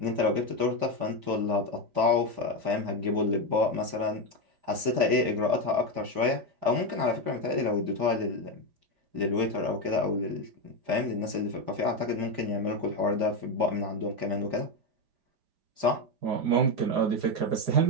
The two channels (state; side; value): late; left; 5.0 ms